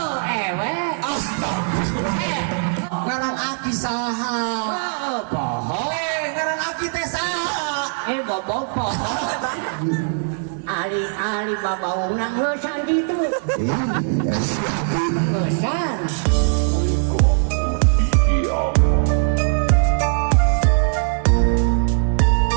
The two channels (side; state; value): left; silent; 64 dB below the other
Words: ewe. Astagfirullah. Ngarang aki saha? Poho. Ngarang aki teh saha? Bobo poho. Ali babaung nang leusan gitu. Leusan.